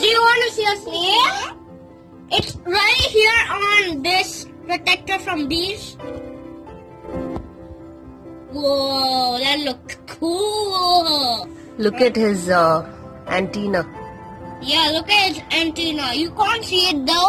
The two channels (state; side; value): identical; both; correlation 1.00